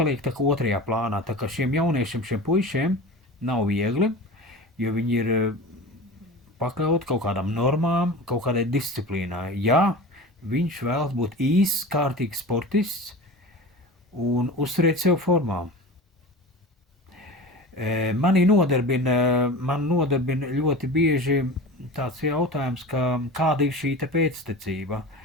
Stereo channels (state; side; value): normal; both; correlation 0.33